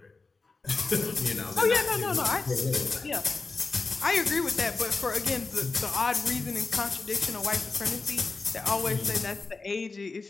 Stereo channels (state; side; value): quieter; right; 4.0 dB